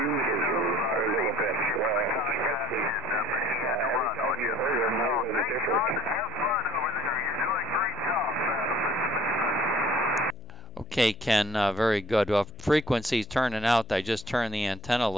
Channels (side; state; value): left; noise; hum, 22 dB below the sound